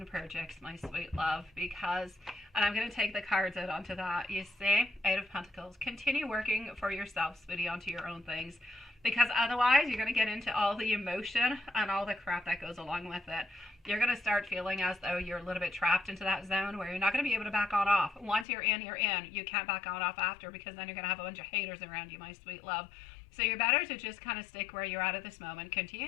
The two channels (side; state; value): right; drops out; at 18.4 s